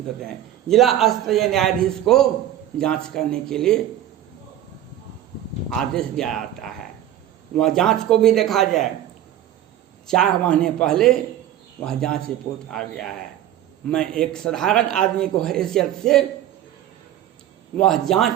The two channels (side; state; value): left; quieter; 12.0 dB